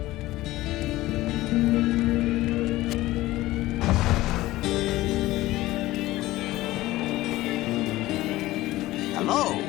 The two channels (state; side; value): quieter; right; 17.3 dB